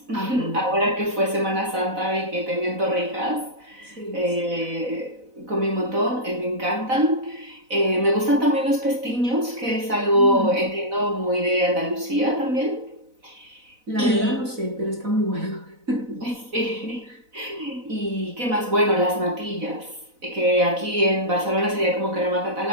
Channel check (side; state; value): left; late; 4.0 ms